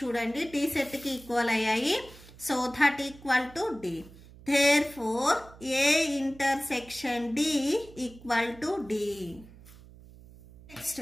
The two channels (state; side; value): noise; right; hum, 21 dB below the sound